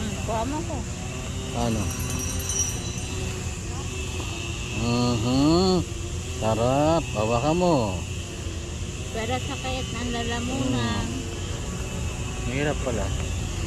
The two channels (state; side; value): identical; both; correlation 1.00